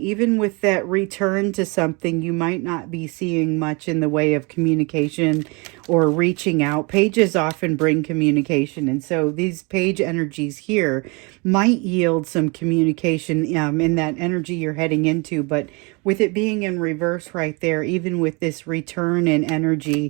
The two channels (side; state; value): left; quieter; 29.5 dB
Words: Even with that return to something, you might not be seeing much in the way of communication or reaching out. Pages often bring communication, and so these page energies here might yield some communication in that energy you're heading into. But with it being in reverse right there, even with this return in